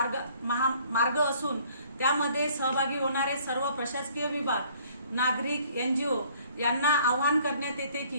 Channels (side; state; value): both; inverted; correlation -0.59